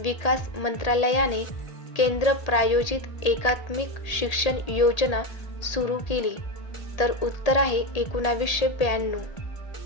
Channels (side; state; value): right; late; 1.8 ms